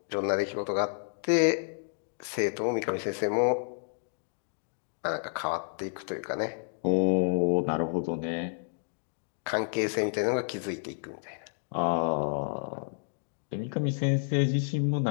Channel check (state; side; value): silent; right; digital silence